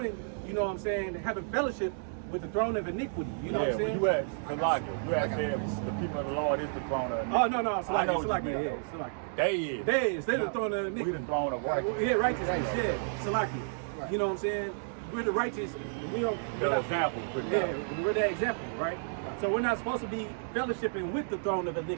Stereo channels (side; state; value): left; silent; digital silence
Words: you know what I'm saying, having fellowship with the throne of iniquity. You know what I'm saying? You had Salaka. You had said the people of the Lord is the throne of iniquity. Oh no, Salaki. They is. They're the throne of iniquity. We the throne of righteousness. Yeah, righteousness. Yeah, Salaki. Right. You know what I'm saying? We're the righteous. We don't. The example. Yeah, we're the example, right? So we're not supposed to be fellowshipping with the throne of